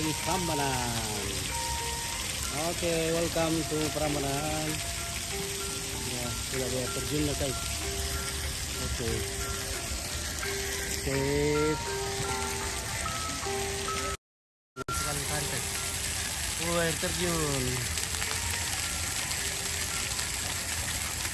Prambanan. Oke, welcome to Prambanan. Ya, sudah dia terjun na guys. Oke. Sip. Sekali pantai. Air terjun.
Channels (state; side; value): identical; both; correlation 1.00